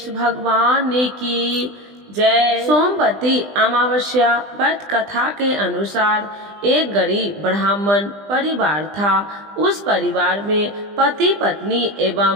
भगवान की जय। सोमवती अमावस्या व्रत कथा के अनुसार एक गरीब ब्राह्मण परिवार था। उस परिवार में पति पत्नी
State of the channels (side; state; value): left; late; 20 ms